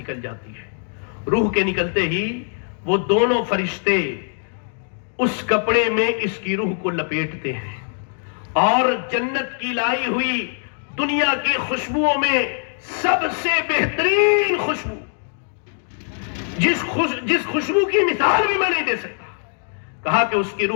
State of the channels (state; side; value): silent; right; 64 dB below the other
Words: جاتی ہے. روح کے نکلتے ہی وہ دونوں فرشتے اس کپڑے میں اس کی روح کو لپیٹتے ہیں اور جنت کی لائی ہوئی دنیا کی خوشبوؤں میں سب سے بہترین خوشبو، جس خوشبو کی مثال بھی میں نہیں دے سکتا، کہا کہ اس کی